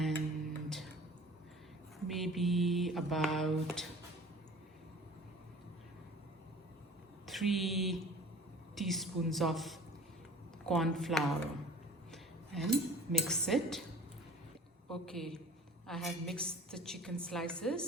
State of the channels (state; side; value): normal; both; correlation 0.45